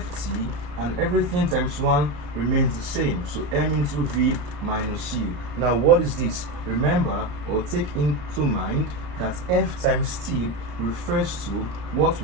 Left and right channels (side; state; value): left; late; 34 ms